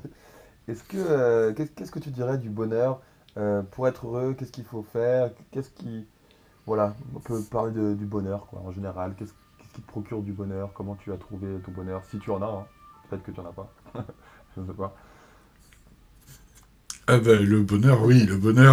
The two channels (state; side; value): identical; both; correlation 1.00